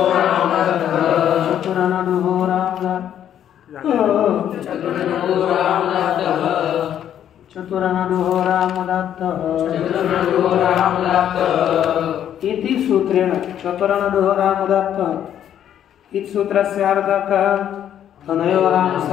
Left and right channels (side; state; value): right; quieter; 10.2 dB